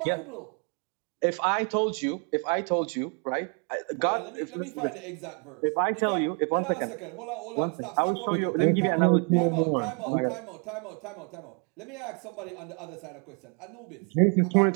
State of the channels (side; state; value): left; quieter; 36.8 dB